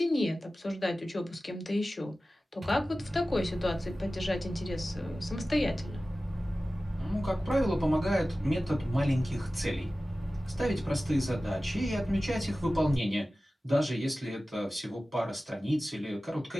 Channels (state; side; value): normal; both; correlation 0.96